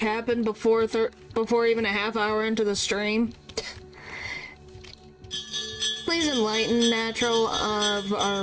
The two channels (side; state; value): both; identical; correlation 1.00